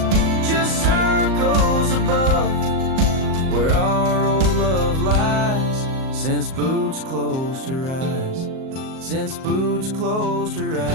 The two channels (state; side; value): late; left; 38 ms